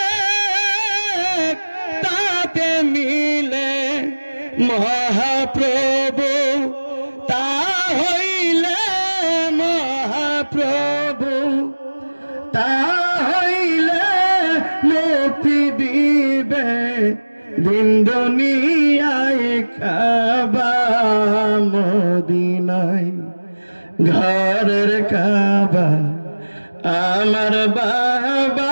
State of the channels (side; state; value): both; inverted; correlation -1.00